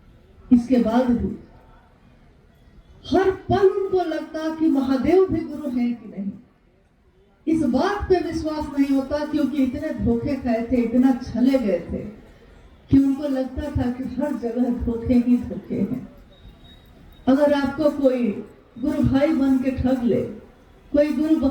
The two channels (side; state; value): both; identical; correlation 1.00